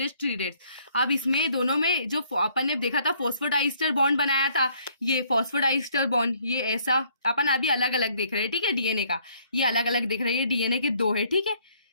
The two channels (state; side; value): inverted; both; correlation -0.63